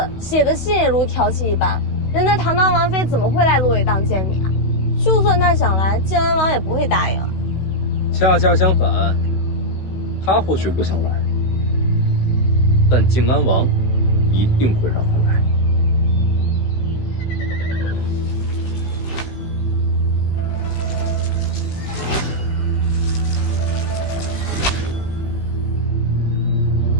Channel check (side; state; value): right; late; 16 ms